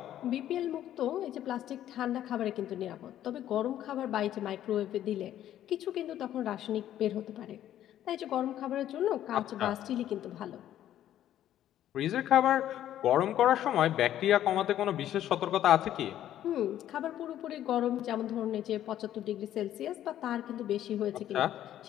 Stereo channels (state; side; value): quieter; right; 11.8 dB